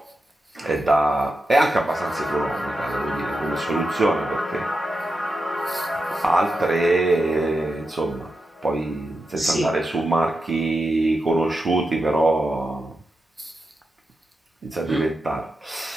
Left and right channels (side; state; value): both; normal; correlation 0.89